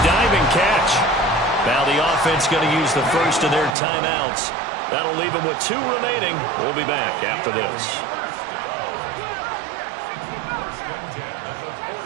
diving catch. Now the offense going to use the first of their timeouts. That'll leave them with 2 remaining. We'll be back after this.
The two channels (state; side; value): drops out; left; at 3.7 s